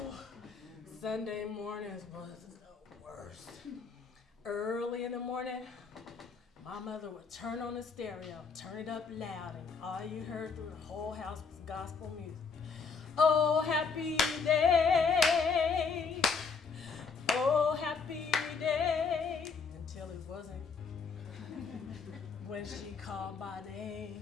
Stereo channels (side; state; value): right; quieter; 5.2 dB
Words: Sunday mornings was the worst. Early in the morning, my mother would turn on the stereo, turn it up loud, and all you heard through the whole house was gospel music. Oh, happy day. Oh, happy day. Until it wasn't. When she called my